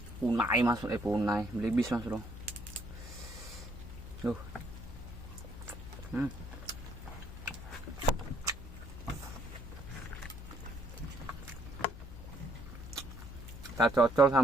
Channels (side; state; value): both; normal; correlation 0.68